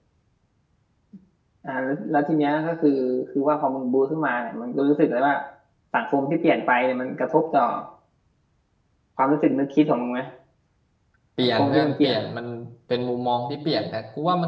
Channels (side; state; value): both; identical; correlation 1.00